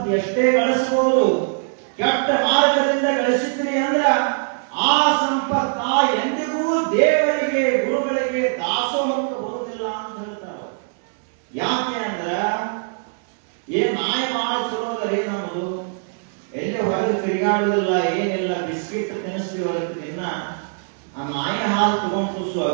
ಎಷ್ಟೇ ಗಳಿಸಬಹುದು ಕೆಟ್ಟ ಮಾರ್ಗದಿಂದ ಗಳಿಸಿದ್ರಿ ಅಂದ್ರ ಆ ಸಂಪತ್ತ ಎಂದಿಗೂ ದೇವರಿಗೆ ಗುರುಗಳಿಗೆ ದಾಸೋಹಕ್ಕೆ ಬರುವುದಿಲ್ಲ ಅಂತ ಹೇಳ್ತಾರೆ ಯಾಕೆ ಅಂದ್ರ ನಾಯಿ ಬಹಳ ಚಲೋ ಅದರಿ ನಮ್ಮದು ಎಲ್ಲಿ ಹೊರಗೆ ತಿರುಗಾಡುದಿಲ್ಲ ಏನಿಲ್ಲ ಬಿಸ್ಕಿಟ್ ತಿನ್ನಿಸ್ತೀವಿ ಹೊರಗೆ ತಿನ್ನ ಆ ನಾಯಿ ಹಾಲು ತಗೊಂಡು ಕೂಸು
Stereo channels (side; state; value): left; silent; digital silence